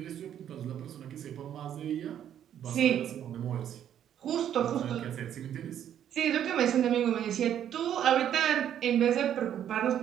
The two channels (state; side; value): quieter; left; 10.1 dB